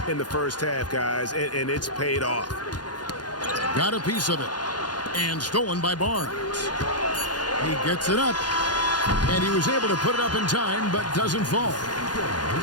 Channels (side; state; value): right; late; 0.70 ms